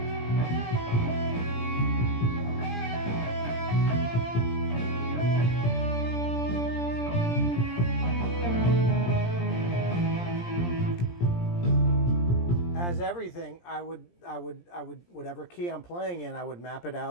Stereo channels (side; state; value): right; late; 17 ms